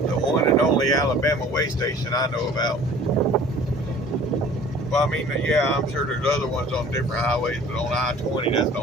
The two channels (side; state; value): both; normal; correlation 0.48